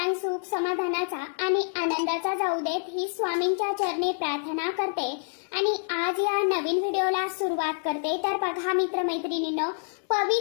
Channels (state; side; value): silent; right; digital silence